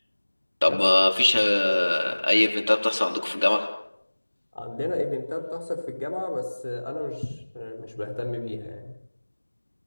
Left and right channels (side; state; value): both; inverted; correlation -1.00